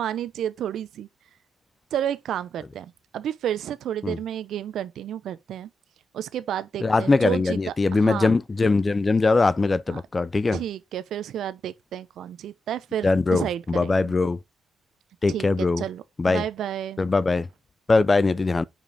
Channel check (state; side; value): normal; both; correlation 0.88